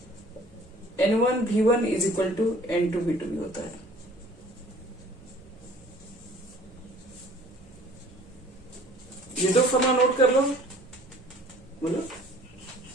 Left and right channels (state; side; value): normal; both; correlation 0.52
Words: N1 V1 is equal to N2 V2 भी होता है। ये दो फॉर्मूला नोट कर लो, बोलो।